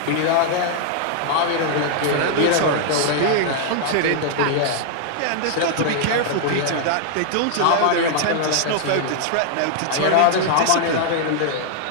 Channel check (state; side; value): different; both; correlation 0.00